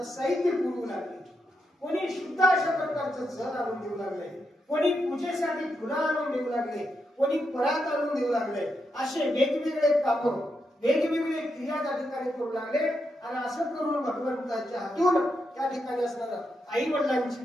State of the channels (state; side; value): normal; both; correlation 0.83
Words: साहित्य पुरवू लागले कोणी शुद्ध अशा प्रकारचं जल आणून देऊ लागले कोणी पूजेसाठी फुलं आणून देऊ लागले कोणी परात आणून देऊ लागले असे वेगवेगळे काम वेगवेगळे क्रिया त्या ठिकाणी करू लागले आणि असं करून भगवंताच्या हातून त्या ठिकाणी असणारं आई वडिलांची